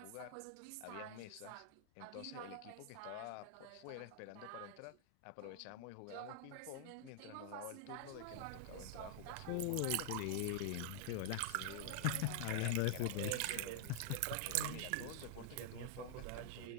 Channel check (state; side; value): different; both; correlation 0.00